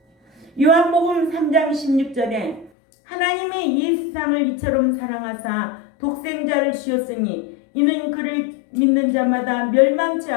요한복음 3장 16절에 하나님이 이 세상을 이처럼 사랑하사 독생자를 주셨으니 이는 그를 믿는 자마다 멸망치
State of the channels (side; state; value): right; drops out; at 2.7 s